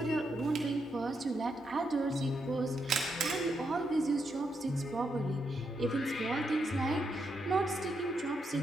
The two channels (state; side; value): normal; both; correlation 0.81